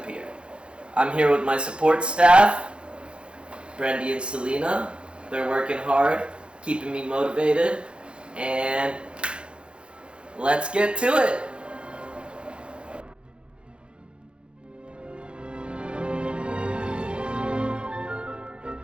Pier. I'm here with my support staff, Brandy and Selena. They're working hard, keeping me motivated, and let's get to it.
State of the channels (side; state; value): left; late; 0.056 ms